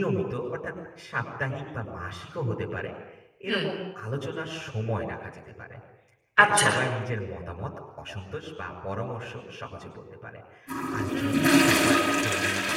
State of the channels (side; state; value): both; identical; correlation 1.00